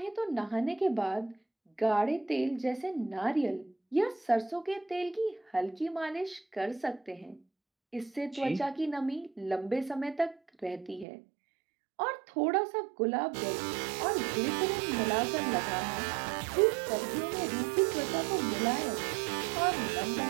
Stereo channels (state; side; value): drops out; left; at 11.1 s